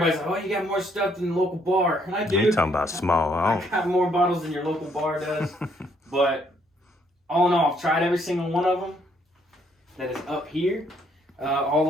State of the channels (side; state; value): both; normal; correlation 0.69